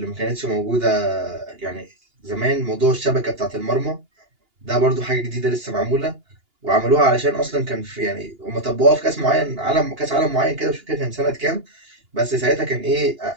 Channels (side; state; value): left; late; 2.8 ms